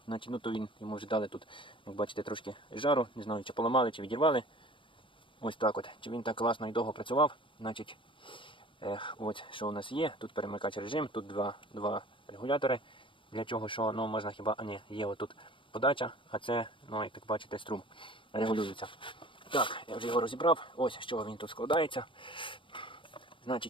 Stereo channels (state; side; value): late; right; 0.25 ms